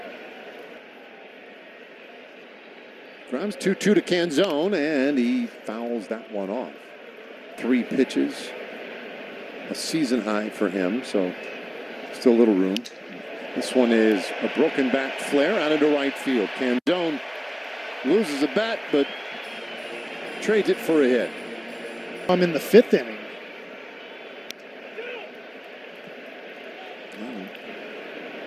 DeGrom's 2-2 to Canzone, and he fouls that one off. 3 pitches, a season high for him, so still a little room. This one is a broken back flare out into right field. Canzone loses a bat, but trades it for a hit. I'm in the 5th inning.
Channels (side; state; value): both; identical; correlation 1.00